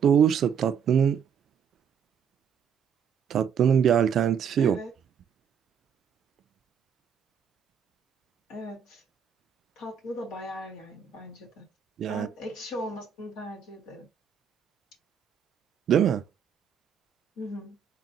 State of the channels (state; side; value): quieter; left; 7.6 dB